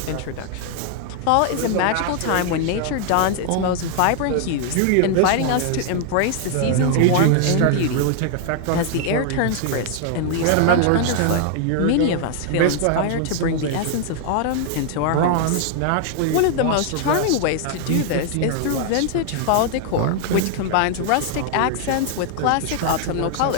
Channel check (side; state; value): both; different; correlation 0.00